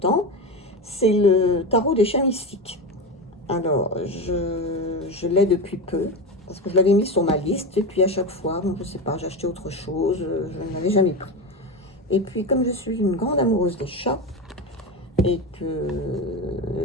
C'est le tarot des chats mystiques. Alors, je l'ai depuis peu, parce que je l'avais mis sur ma liste, et puis à chaque fois, bon, je sais pas, j'ai acheté autre chose, je ne l'avais jamais pris. Et puis, comme je suis une grande amoureuse des chats, et que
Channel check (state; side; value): normal; both; correlation 0.20